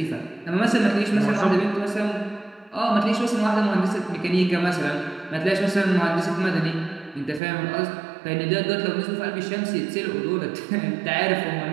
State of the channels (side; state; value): left; drops out; at 7.4 s